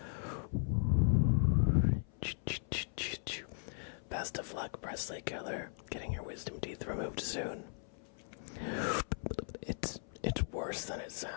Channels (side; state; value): right; silent; 53 dB below the other